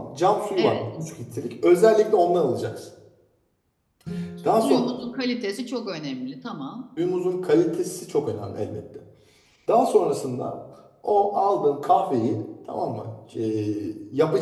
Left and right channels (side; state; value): both; identical; correlation 1.00